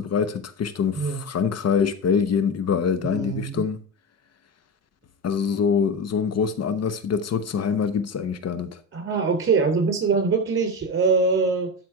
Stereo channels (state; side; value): normal; both; correlation 0.21